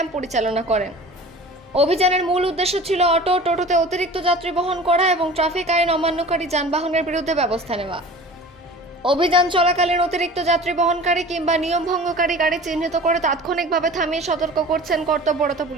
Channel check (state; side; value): normal; both; correlation 0.40